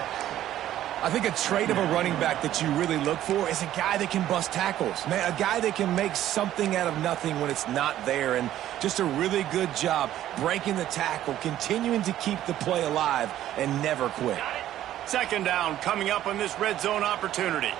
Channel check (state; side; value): quieter; left; 12.6 dB